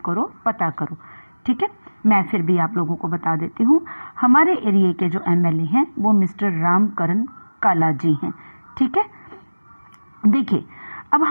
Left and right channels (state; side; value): inverted; both; correlation -1.00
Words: करो, पता करो. ठीक है, मैं फिर भी आप लोगों को बता देती हूँ. हमारे एरिया के जो MLA हैं वो मिस्टर रामकरण काला जी हैं. ठीक है, देखिए अब